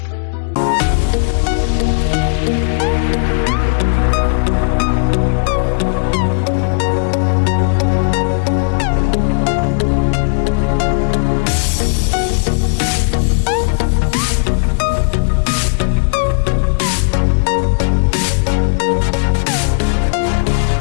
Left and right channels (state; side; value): silent; right; digital silence